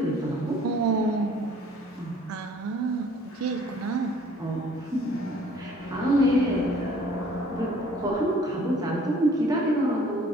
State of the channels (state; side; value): normal; both; correlation 0.55